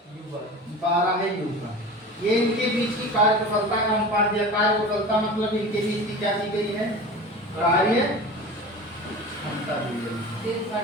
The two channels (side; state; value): both; normal; correlation 0.34